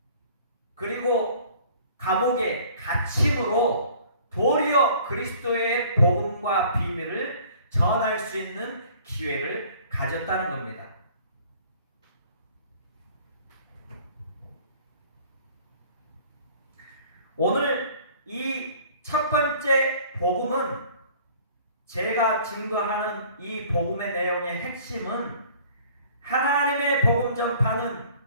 그리고 감옥에 갇힘으로 도리어 그리스도의 복음과 비밀을 전할 수 있는 기회를 가졌다는 겁니다. 오늘 이 첫 번째 복음은, 제가 증거하는 이 복음의 내용의 핵심은 하나님의 복음 전파는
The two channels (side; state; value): both; inverted; correlation -0.52